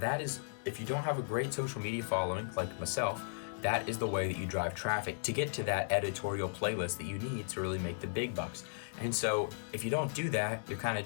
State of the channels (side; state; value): right; silent; digital silence